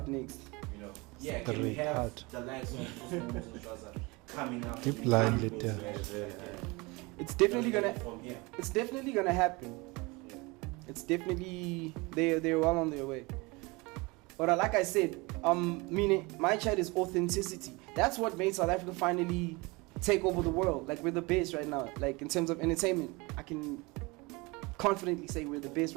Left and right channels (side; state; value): left; quieter; 25.4 dB